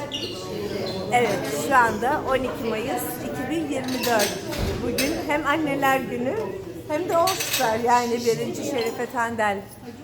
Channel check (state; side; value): identical; both; correlation 1.00